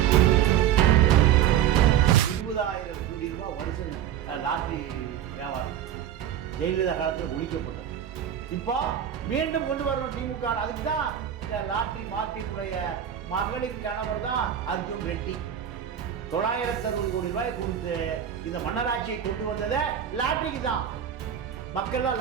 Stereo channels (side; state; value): left; quieter; 10.0 dB